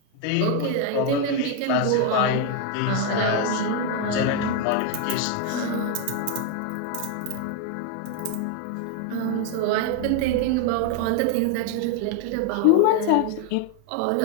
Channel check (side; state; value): both; different; correlation 0.01